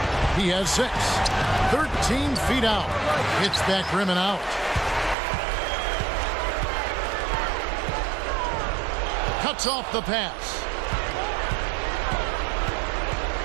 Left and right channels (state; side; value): drops out; left; at 5.2 s